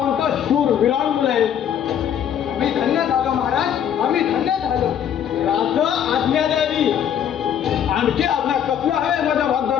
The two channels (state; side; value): quieter; right; 9.3 dB